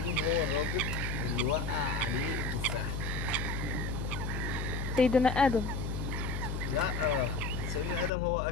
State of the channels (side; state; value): left; noise; hum, 3 dB below the sound